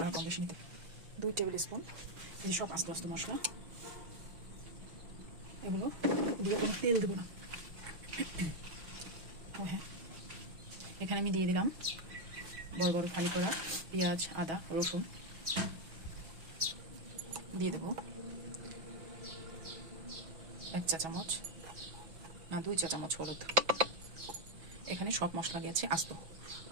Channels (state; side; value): late; left; 6.2 ms